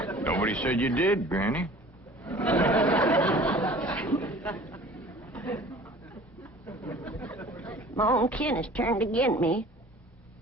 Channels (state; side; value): normal; both; correlation 0.46